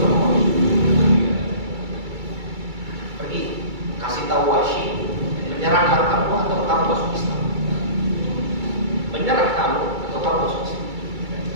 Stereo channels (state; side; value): late; left; 2.3 ms